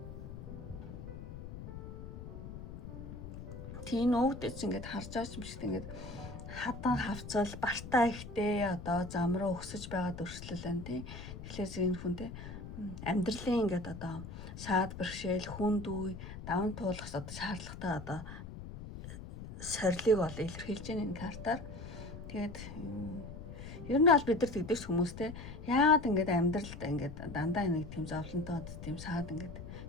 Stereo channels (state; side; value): noise; left; rumble, 10 dB below the sound